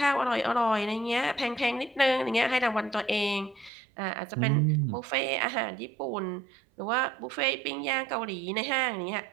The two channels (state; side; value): drops out; left; at 3.7 s